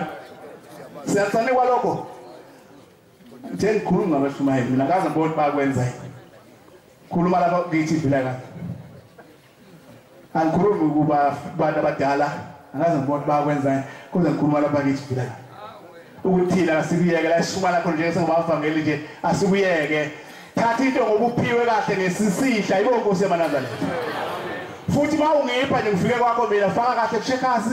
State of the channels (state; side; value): identical; both; correlation 1.00